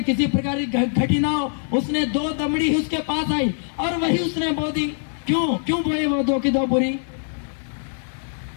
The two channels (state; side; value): silent; right; digital silence